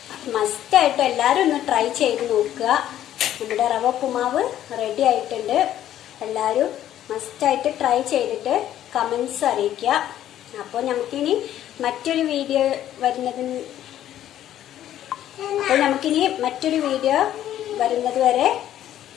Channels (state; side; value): quieter; right; 11.9 dB